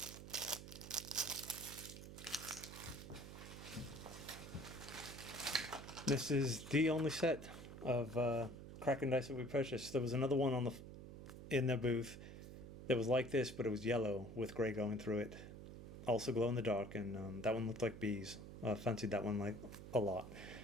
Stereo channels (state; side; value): noise; right; hum, 12 dB below the sound